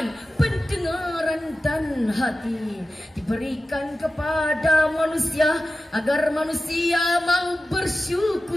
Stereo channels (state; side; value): normal; both; correlation 0.94